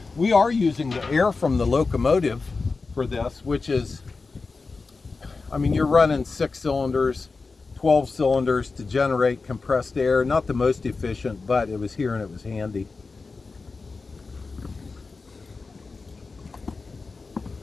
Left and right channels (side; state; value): right; quieter; 4.1 dB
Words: We are using the air from the Locomotive for this, which is, I mean, you're running 6 cylinders, 12 cylinders to generate compressed air. Not the most efficient, but it was here and it was handy.